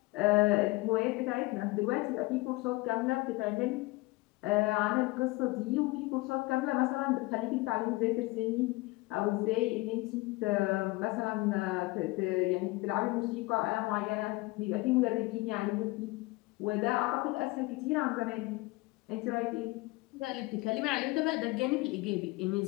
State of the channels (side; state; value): right; quieter; 22.2 dB